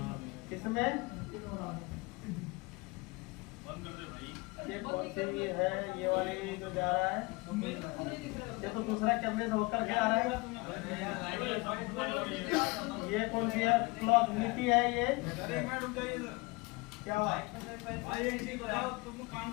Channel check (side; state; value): right; quieter; 25.4 dB